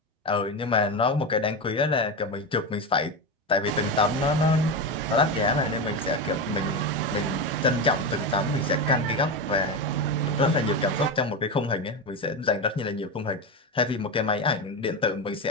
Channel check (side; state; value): both; normal; correlation 0.16